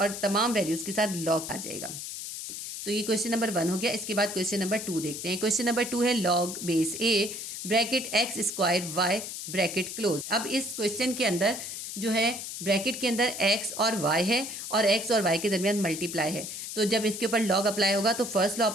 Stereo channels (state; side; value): noise; left; hiss, 7 dB below the sound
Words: तमाम वैल्यूज़ के साथ लॉग आ जाएगा। तो ये क्वेश्चन नंबर 1 हो गया। इसके बाद क्वेश्चन नंबर 2 देखते हैं। क्वेश्चन नंबर 2 है log base A bracket X square Y bracket close. अब इस क्वेश्चन के अंदर जो है ब्रैकेट के अंदर x और y है और x और y के दरमियान मल्टीप्लाई है, तो जब इसके ऊपर लॉग अप्लाई होगा तो फर्स्ट लॉ